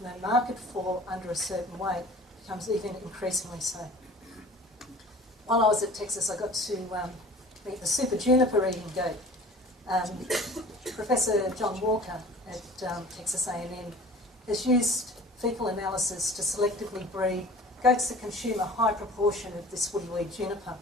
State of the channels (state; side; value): normal; both; correlation 0.44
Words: no market for under a certain weight, becomes even increasingly so. While I was at Texas, I got to meet the super juniper eating goat. Professor John Walker at Texas A&M has used fecal analysis to selectively breed goats that consume a high proportion of this woody weed juniper.